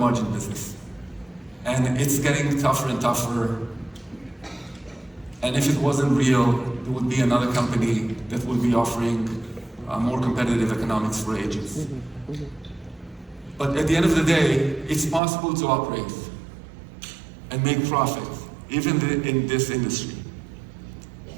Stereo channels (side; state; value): left; drops out; at 15.2 s